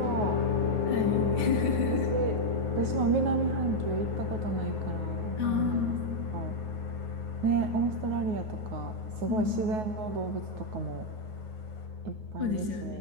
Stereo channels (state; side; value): late; left; 9.4 ms